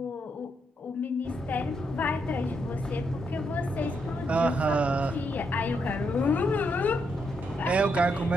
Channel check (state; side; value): normal; both; correlation 0.79